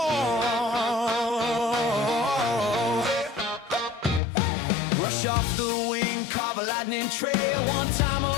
Flash off the wing, carve a lightning trail. One time a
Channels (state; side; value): drops out; right; at 4.2 s